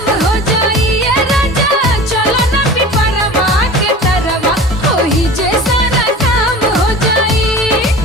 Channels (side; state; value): both; normal; correlation 0.38